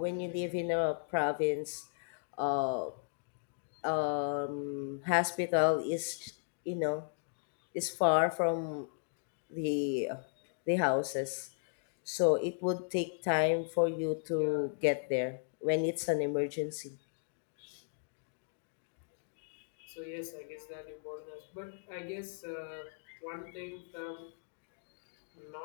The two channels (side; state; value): right; silent; digital silence